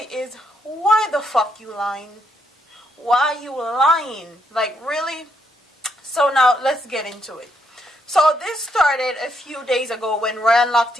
is, why the fuck you lying? Why you lying? Like, really? So now let's get into it. So this started a few days ago when Ryan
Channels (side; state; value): both; normal; correlation 0.76